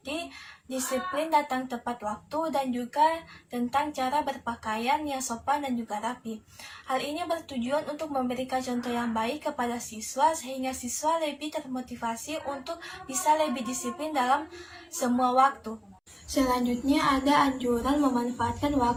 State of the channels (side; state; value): both; identical; correlation 1.00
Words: disiplin datang tepat waktu dan juga tentang cara berpakaian yang sopan dan juga rapi. Hal ini bertujuan untuk memberikan contoh yang baik kepada siswa sehingga siswa lebih termotivasi untuk bisa lebih disiplin dalam semua waktu. Selanjutnya ada anjuran memanfaatkan